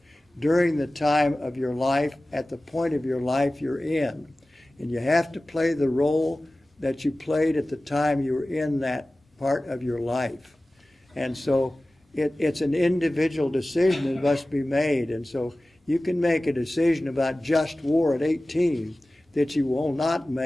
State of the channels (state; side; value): normal; both; correlation 0.97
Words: during the time of your life, at the point of your life you're in. And you have to play the role that you played at the time you were in that part of your life. And so it's an individual decision that must be made. And so you can make a decision about just war at 18 that you will not